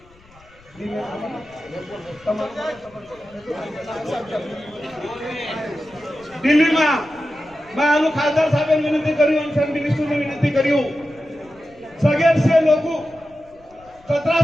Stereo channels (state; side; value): noise; left; rumble, 28 dB below the sound